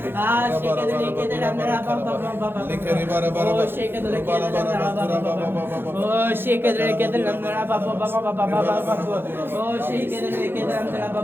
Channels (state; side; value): late; left; 0.10 ms